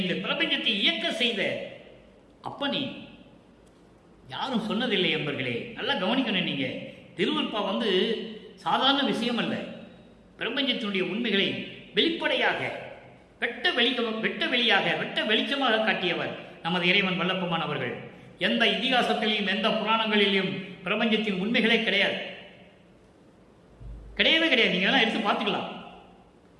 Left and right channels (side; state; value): both; identical; correlation 1.00